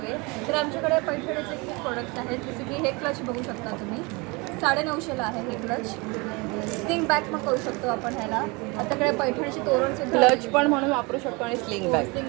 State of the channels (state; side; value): quieter; left; 27.4 dB